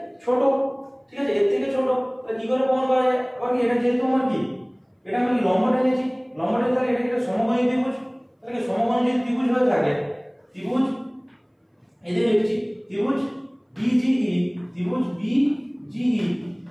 ছোট। ঠিক আছে, এর থেকে ছোট। তাহলে কি করে প্রমাণ করা যায়? আবার কি এটা যেহেতু আমার কি এটা আমি কি লম্ব টেনেছি, লম্ব টেনে তাহলে এটা একটা সমকোণী ত্রিভুজ। তাহলে কি সমকোণী যদি ত্রিভুজ হয়ে থাকে, ত্রিভুজ এই যে লিখছি ত্রিভুজ বিজিই, ত্রিভুজ বিজিই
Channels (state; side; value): identical; both; correlation 1.00